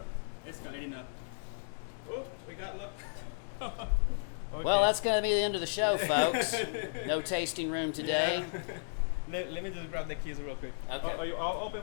escalating up. Oh, we got luck. Okay. Well, that's going to be the end of the show, folks. No tasting room today. Yeah. Let me just grab the keys real quick. Okay. I'll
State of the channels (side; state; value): right; silent; 55 dB below the other